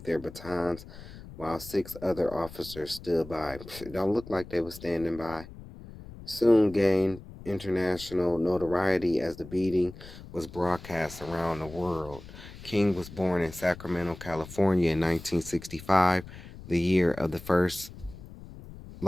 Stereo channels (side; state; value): left; noise; rumble, 16 dB below the sound